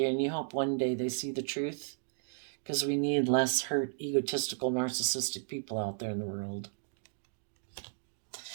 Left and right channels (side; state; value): left; silent; digital silence